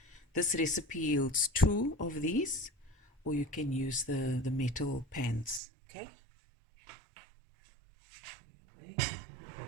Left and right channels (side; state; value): left; drops out; at 5.6 s